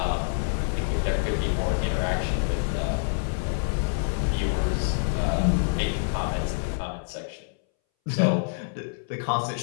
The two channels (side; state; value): right; silent; 60 dB below the other